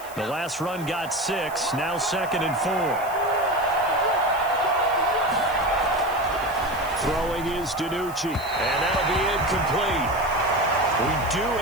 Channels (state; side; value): noise; left; hiss, 17 dB below the sound